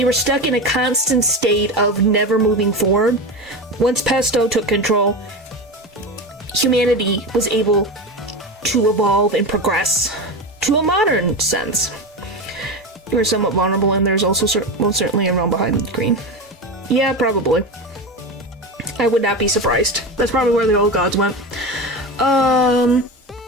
were stuck in a constant state of never moving forward. Once Pesto took control, humanity was able to evolve and progress to a modern sense. You were somewhat vulnerable, and there's also most certainly a realm behind the green. Yeah, probably. I would not be surprised. That's probably where the old gods went.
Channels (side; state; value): both; normal; correlation 0.22